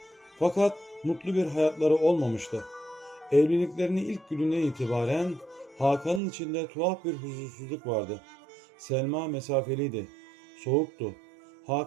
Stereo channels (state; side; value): drops out; left; at 6.2 s